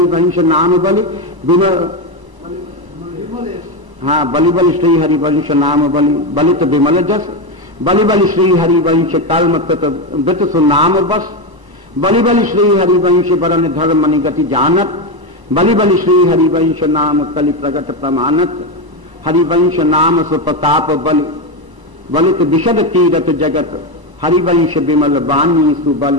नाम बलि हाँ बलि बलि श्री हरिवंश नाम बलि बलित विमल जस। बलि बलि श्री हरिवंश कर्म वृत सुनाम बस। बलि बलि श्री हरिवंश वरन धर्म निगति जानत। बलि बलि श्री हरिवंश नाम कलि प्रगट प्रमाणत। हरिवंश नाम सुप्रताप बलि बलित विशद कीरत जगत। हरिवंश विमल वाणी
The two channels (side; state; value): left; late; 1.0 ms